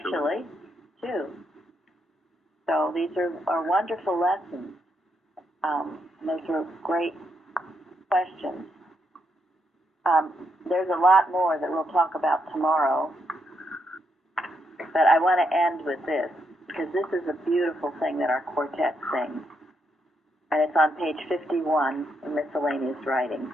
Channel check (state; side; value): normal; both; correlation 0.79